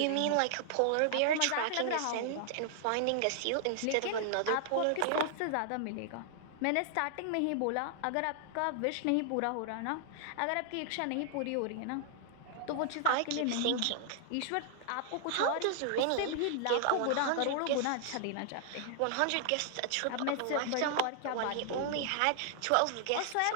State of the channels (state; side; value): different; both; correlation 0.00